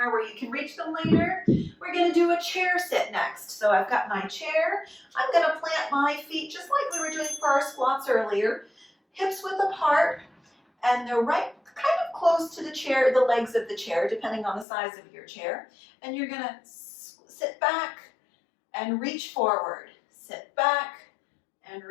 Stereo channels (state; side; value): drops out; right; at 14.7 s